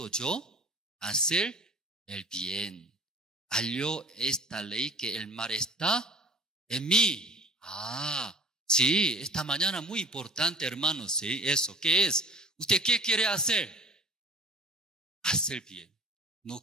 yo hacer el bien, halló esta ley que el mal está en mí. Sí, esta mañana muy importante, hermanos, sí, eso. ¿Qué es? ¿Usted qué quiere hacer? Hacer bien.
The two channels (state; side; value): normal; both; correlation 0.43